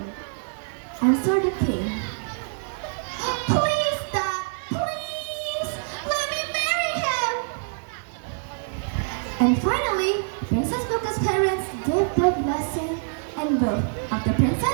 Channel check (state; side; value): silent; left; 56 dB below the other